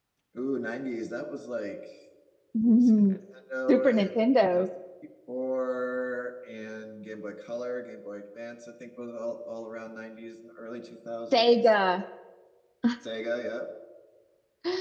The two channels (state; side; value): identical; both; correlation 1.00